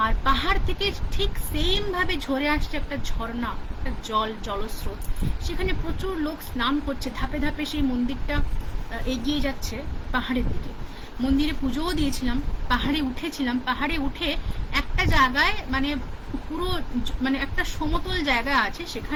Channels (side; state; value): both; identical; correlation 1.00